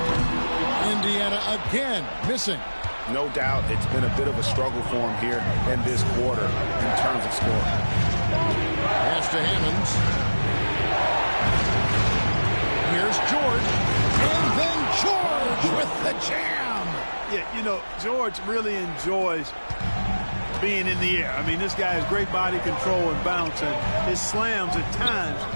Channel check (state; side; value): inverted; both; correlation -1.00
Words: Indiana again missing. No doubt it's been a bit of a struggle for him here in this quarter in terms of scoring. Pass to Hammonds. Here's George. And then George with the jam. Yeah, you know, George really enjoys being in the air. I mean, this guy has great body control and bounce, and his slams at times